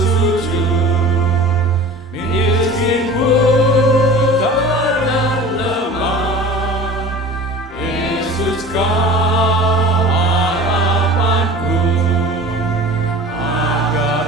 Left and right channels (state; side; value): normal; both; correlation 0.40